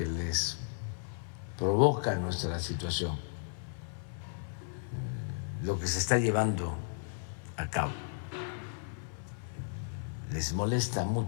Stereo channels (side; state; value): right; silent; 55 dB below the other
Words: les provoca nuestra situación, lo que se está llevando a cabo. Les molesta